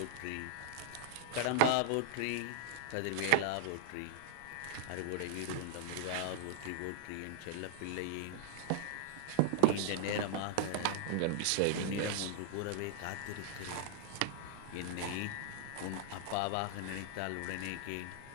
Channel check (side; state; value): both; different; correlation 0.00